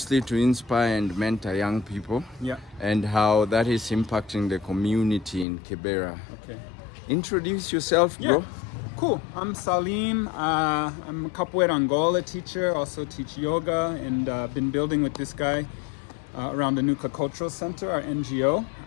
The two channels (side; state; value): right; drops out; at 5.5 s